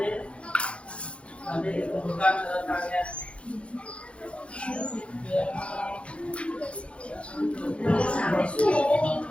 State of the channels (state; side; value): late; right; 0.060 ms